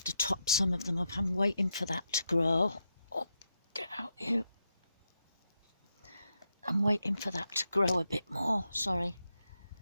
to top some of them up. I'm waiting for that to grow. Oh, get out you. I'm waiting for that to grow a bit more, sorry.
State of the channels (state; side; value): inverted; both; correlation -0.83